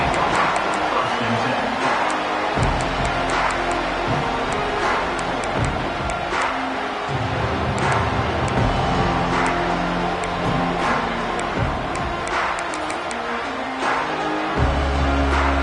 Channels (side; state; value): both; identical; correlation 1.00